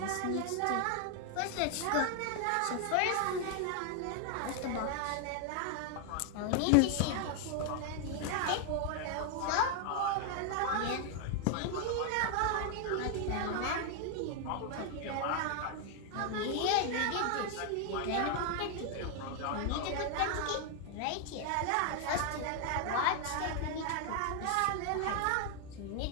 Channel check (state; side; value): different; both; correlation 0.00